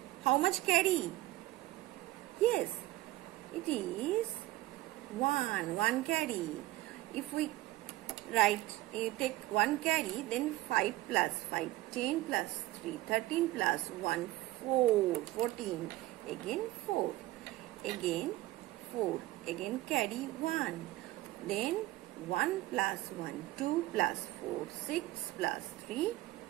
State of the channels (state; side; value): quieter; left; 17.5 dB